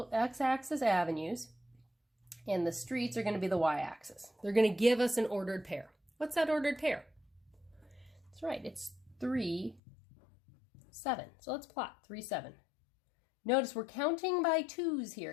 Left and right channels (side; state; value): right; drops out; at 9.8 s